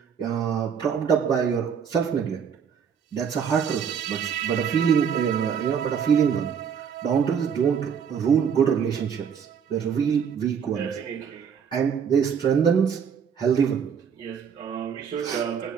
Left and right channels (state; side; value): quieter; left; 7.3 dB